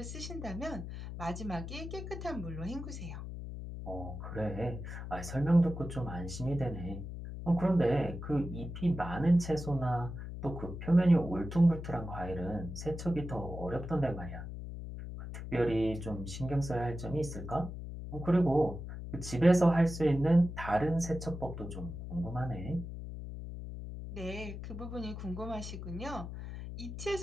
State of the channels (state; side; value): noise; left; hum, 8 dB below the sound